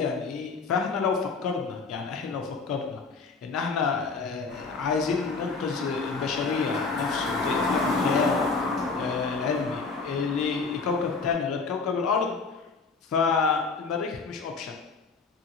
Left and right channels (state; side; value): quieter; right; 4.4 dB